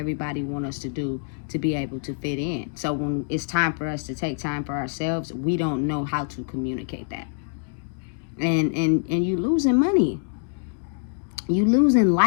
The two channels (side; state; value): right; silent; 62 dB below the other